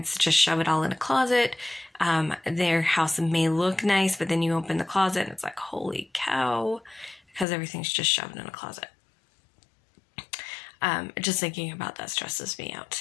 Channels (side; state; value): right; drops out; at 7.5 s